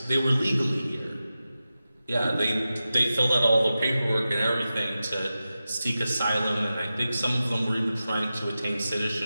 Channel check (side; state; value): both; inverted; correlation -0.93